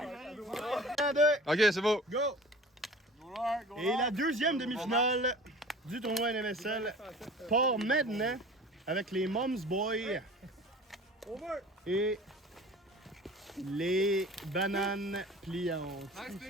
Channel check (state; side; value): normal; both; correlation 0.41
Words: 1, 2, Ok, c'est beau. go! Et la deuxième demi-finale du tournoi NMSL part maintenant avec les Moms Boys et les Bananes Pliantes.